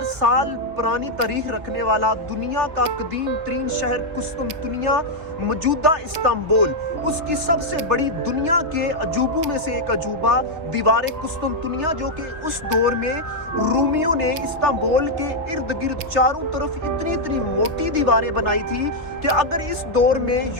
साल पुरानी तारीख रखने वाला दुनिया का कदीम तरीन शहर कुस्तुनतुनिया, मौजूदा इस्तांबुल, उसकी सबसे बड़ी दुनिया के अजूबों में से एक अजूबा दीवार कुस्तुनतुनिया, जो कि उस दौर में रूमियों ने इस्तांबुल के इर्द गिर्द चारों तरफ इतनी इतनी मोटी दीवारें बनाई थी कि अगर इस दौर में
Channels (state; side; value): late; left; 3.4 ms